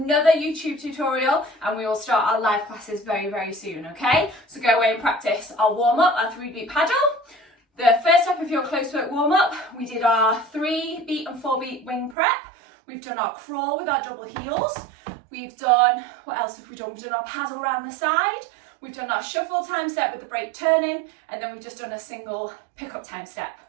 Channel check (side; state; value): left; drops out; at 12.2 s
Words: YouTube tutorial and we will start our live classes very, very soon, okay? So go away and practice our warm-up, our 3-beat paddle. The first step of your close work warm-up, we did our 3-beat and 4-beat wing prep. We've done our crawl with our double heels. We've done, what else have we done? We've done our paddle around the side. We've done our shuffle time step with the break turning, and then we've just done a single pick-up time step,